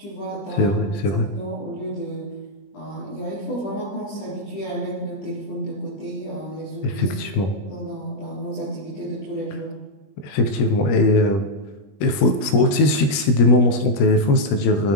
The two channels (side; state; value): right; late; 21 ms